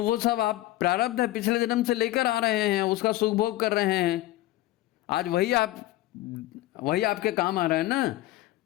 वो सब आप प्रारब्ध है, पिछले जन्म से लेकर आ रहे हैं, उसका सुख भोग कर रहे हैं। आज वही आपके काम आ रहा है ना।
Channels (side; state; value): right; quieter; 16.4 dB